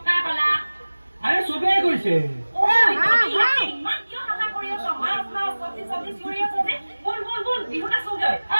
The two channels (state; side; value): inverted; both; correlation -1.00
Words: আৰে চবেই কৈছে।